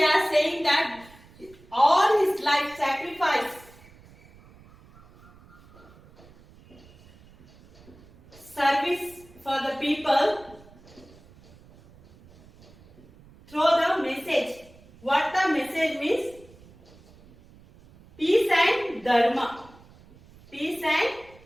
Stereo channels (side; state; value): right; noise; rumble, 25 dB below the sound